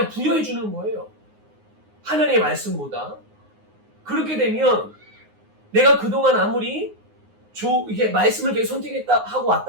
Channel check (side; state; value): left; late; 9.6 ms